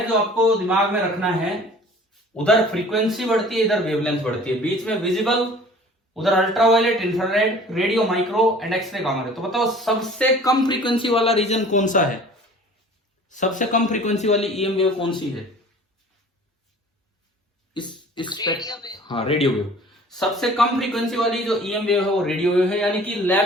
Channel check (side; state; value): both; normal; correlation 0.47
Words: जो आपको दिमाग में रखना है। उधर फ्रीक्वेंसी बढ़ती है, इधर वेवलेंथ बढ़ती है, बीच में विजिबल, उधर ultraviolet, infrared, radio, micro and x ray, gamma ray. तो बताओ सबसे कम फ्रीक्वेंसी वाला रीजन कौन सा है? सबसे कम फ्रीक्वेंसी वाली ईएम वेव कौन सी है? हाँ, रेडियो वेव। सबसे कम फ्रीक्वेंसी वाली जो ईएम वेव है वो रेडियो वेव है। यानी कि